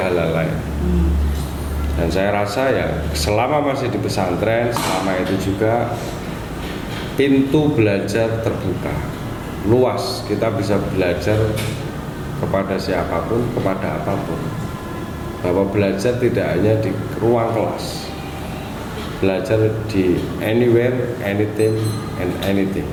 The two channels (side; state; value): both; identical; correlation 1.00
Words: lain. Dan saya rasa ya selama masih di pesantren, selama itu juga pintu belajar terbuka, luas. Kita bisa belajar kepada siapapun, kepada apapun. Bahwa belajar tidak hanya di ruang kelas, belajar di anywhere, anything, and anything,